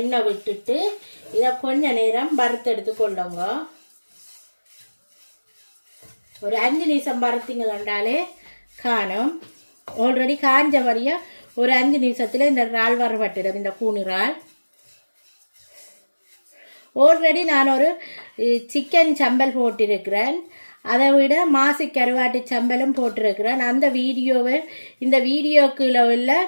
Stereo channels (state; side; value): inverted; both; correlation -1.00